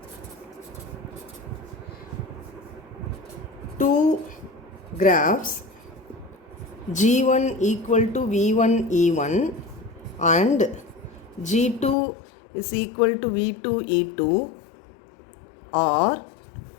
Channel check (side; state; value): right; drops out; at 12.0 s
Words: Two graphs G1 equal to V1 E1 and G2 is equal to V2 E2 are